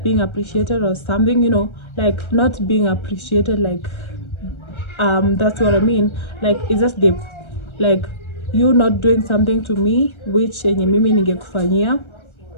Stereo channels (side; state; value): right; late; 1.3 ms